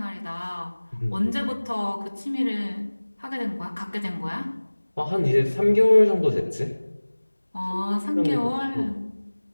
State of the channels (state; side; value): inverted; both; correlation -1.00